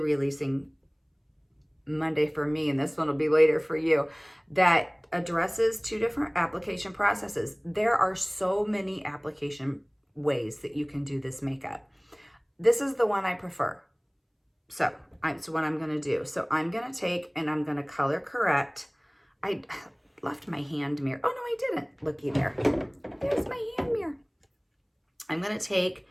Monday for me, and this one will be later for you, that addresses 2 different application processes. There are so many application ways that you can do this makeup. This is the one I prefer. So it's what I'm gonna do. So I'm gonna take and I'm gonna color correct. I left my hand mirror. Oh no, I didn't. Looky there. There's my hand mirror. I'm gonna take,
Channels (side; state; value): both; identical; correlation 1.00